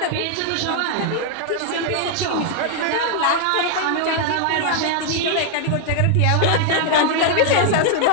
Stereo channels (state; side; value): different; both; correlation 0.00